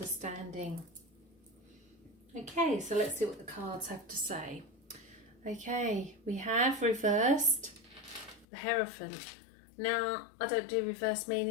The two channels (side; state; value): right; drops out; at 8.5 s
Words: Okay, so let's see what the cards have to say. Okay, we have reversed the Hierophant. Now, I don't do reverse